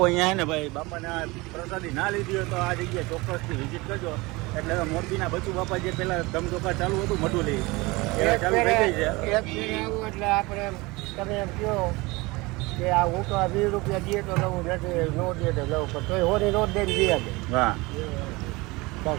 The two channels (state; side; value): quieter; left; 23.2 dB